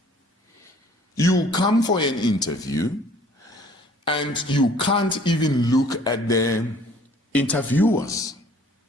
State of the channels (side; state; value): both; normal; correlation 0.55